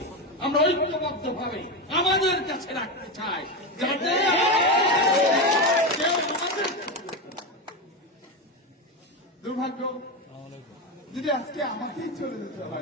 আমরা ঐক্যবদ্ধ ভাবে আমাদের কাছে রাখতে চাই, যাতে কেউ আমাদের দুর্ভাগ্য যদি আজকে আমাকেই চলে যেতে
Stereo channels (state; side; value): normal; both; correlation 0.15